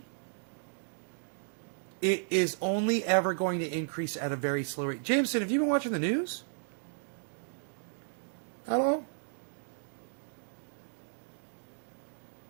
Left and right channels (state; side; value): silent; left; digital silence